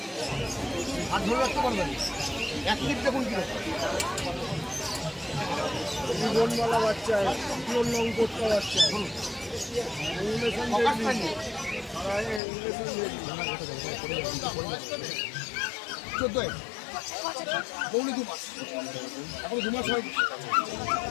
হাত ধরে রাখতে পারবেন। এক মিনিট দেখুন কি জীবনমালা বাচ্চা, পিওর লং কোটটা বাচ্চা, চোদ্দোয় পৌনে 2 মাস, এখন 2 মাস হয়।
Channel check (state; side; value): drops out; right; at 12.4 s